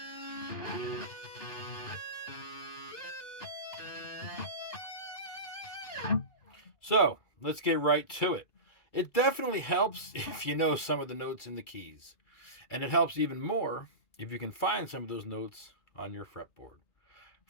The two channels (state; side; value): late; right; 2.4 ms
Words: So, let's get right to it. It definitely helps if you know some of the notes in the keys. And it helps even more if you can find some of those notes on your fretboard.